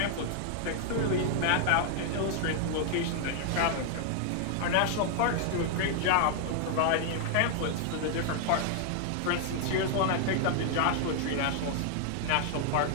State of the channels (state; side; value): different; both; correlation 0.00